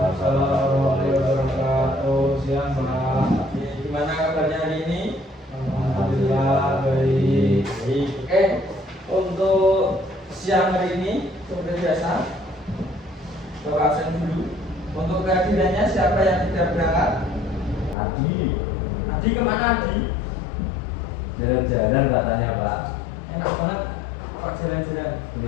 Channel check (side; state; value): right; drops out; at 17.9 s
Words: wabarakatuh. Siang Pak. Gimana kabarnya hari ini? Alhamdulillah baik. Baik. Oke. Untuk siang hari ini seperti biasa, Bapak absen dulu. Untuk kehadirannya siapa yang tidak berangkat? Adi, Adi kemana Adi? jalan-jalan katanya Pak. Enak banget. Pak jalan-jalan. Ada